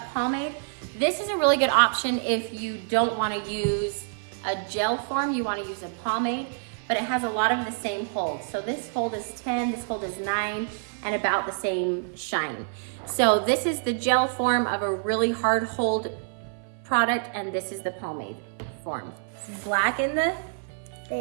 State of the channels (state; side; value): silent; left; 55 dB below the other